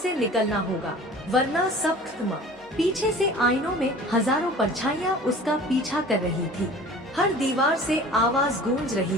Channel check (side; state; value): both; normal; correlation 0.43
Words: निकलना होगा, वरना सब खत्म। पीछे से आईनों में हजारों परछाइयाँ उसका पीछा कर रही थी। हर दीवार से आवाज गूंज रही